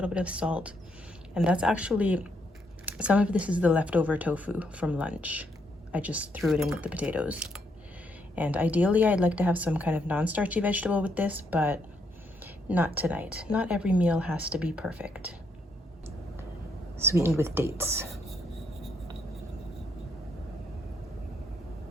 bit of salt. And that's actually, some of this is the leftover tofu from lunch. I just threw it in with the potatoes. And ideally, I'd like to have some kind of non-starchy vegetable with this, but not tonight. Not every meal has to be perfect. Sweetened with dates.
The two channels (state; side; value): normal; both; correlation 0.75